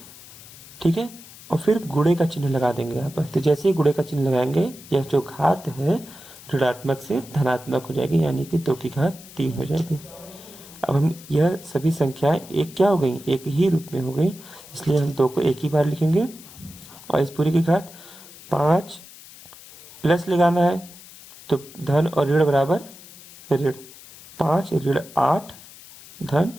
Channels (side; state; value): left; noise; hiss, 19 dB below the sound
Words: ठीक है, और फिर गुणे का चिन्ह लगा देंगे यहाँ पर। तो जैसे ही गुणे का चिन्ह लगाएंगे यह जो घात है ऋणात्मक से धनात्मक हो जाएगी, यानी कि 2 की घात 3 हो जाएगी। अब हम यह सभी संख्याएं एक क्या हो गई, एक ही रूप में हो गई, इसलिए हम 2 को एक ही बार लिखेंगे और इस पूरी की घात 5 प्लस लगाना है तो धन और ऋण बराबर ऋण 5 ऋण 8 धन